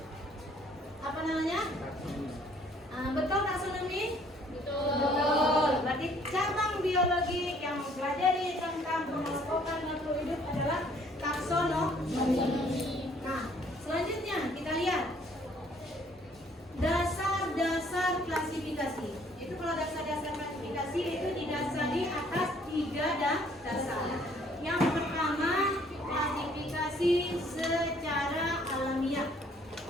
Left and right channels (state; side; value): normal; both; correlation 0.61